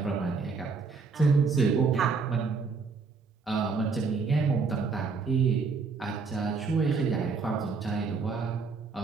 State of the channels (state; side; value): quieter; left; 4.7 dB